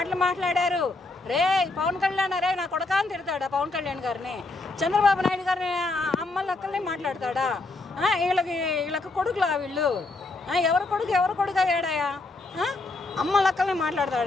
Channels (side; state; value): right; quieter; 3.3 dB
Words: మాట్లాడారు? రే పవన్ కళ్యాణ్ రే నా కొడకా అని తిడతాడా పవన్ కళ్యాణ్ గారిని? చంద్రబాబు నాయుడు గారిని అమ్మలక్కల్ని మాట్లాడతాడా? వీళ్ళకి కొడుకులా వీళ్ళు? ఎవరు కొడుకు అయ్యాడాయా? అమ్మ లక్కల్ని